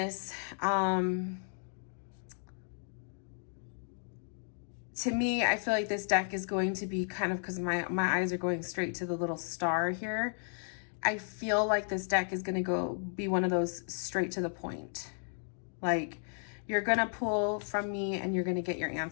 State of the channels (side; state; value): right; silent; 55 dB below the other